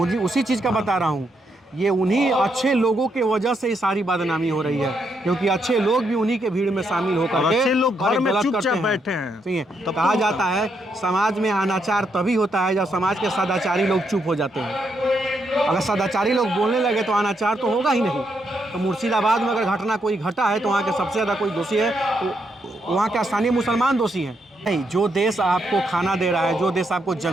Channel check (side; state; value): both; normal; correlation 0.78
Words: उसी चीज़ का बता रहा हूँ। ये उन्हीं अच्छे लोगों के वजह से ये सारी बदनामी हो रही है, क्योंकि अच्छे लोग भी उन्हीं के भीड़ में शामिल होकर के अच्छे लोग घर में गलत चुपचाप करते बैठे हैं। सही है। तो कहा जाता है समाज में अनाचार तभी होता है जब समाज के सदाचारी लोग चुप हो जाते हैं। अगर सदाचारी लोग बोलने लगे तो अनाचार तो होगा ही नहीं। तो मुर्शिदाबाद में अगर घटना कोई घटा है तो वहाँ के सबसे ज़्यादा कोई दोषी है तो वहाँ के स्थानीय मुसलमान दोषी हैं। नहीं, जो देश आपको खाना दे रहा है, जो देश आपको